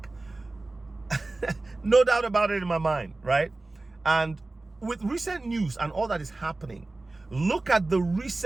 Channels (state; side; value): quieter; left; 3.1 dB